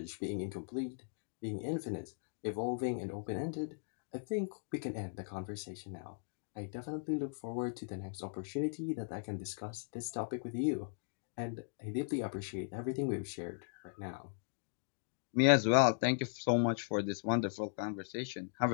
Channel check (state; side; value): silent; right; digital silence